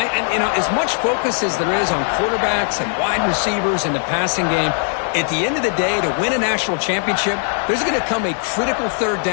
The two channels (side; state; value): right; silent; 57 dB below the other